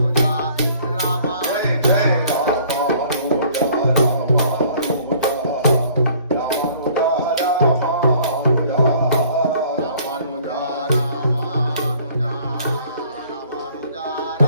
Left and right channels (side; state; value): both; inverted; correlation -0.56